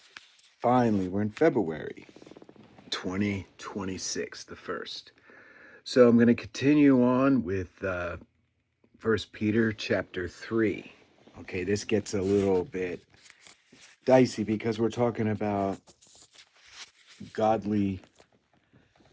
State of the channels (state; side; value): identical; both; correlation 1.00